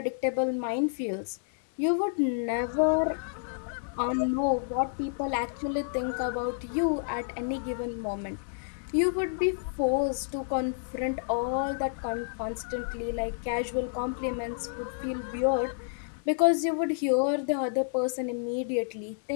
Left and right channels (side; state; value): right; silent; 58 dB below the other